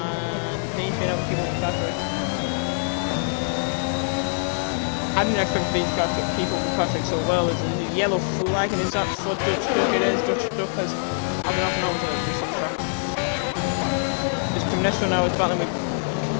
he's been able to keep up with Patrick. I didn't expect these guys to keep up with Patrick so well. There's a yellow flag and is that for Dutch Duck? It is. Dutch Duck has I've been off and on to do some track. This Comnesco now is battling with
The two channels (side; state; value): right; silent; digital silence